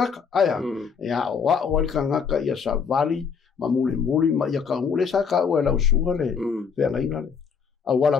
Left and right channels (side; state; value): right; quieter; 6.2 dB